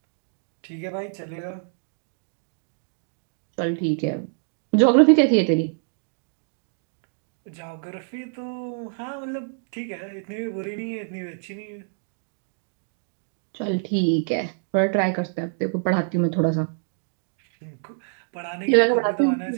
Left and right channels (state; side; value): silent; left; digital silence